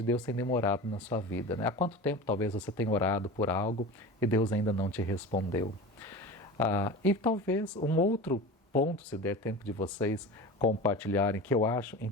Deus tem demorado na sua vida, né? Há quanto tempo talvez você tenha orado por algo e Deus ainda não te respondeu? E talvez um outro ponto, se der tempo de vocês compartilharem, que eu acho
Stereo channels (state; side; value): normal; both; correlation 0.32